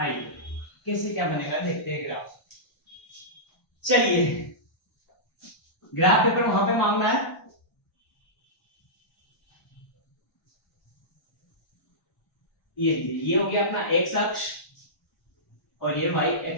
कैसे क्या बनेगा देखते हैं ग्राफ। चलिए ग्राफ पेपर वहां पे मांगना है। ये हो गया अपना एक्स अक्ष और ये वाई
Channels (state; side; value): late; right; 1.0 ms